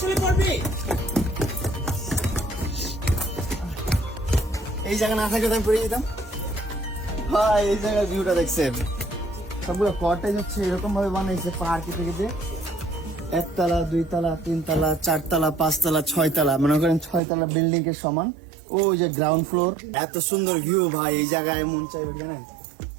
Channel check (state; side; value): drops out; left; at 17.2 s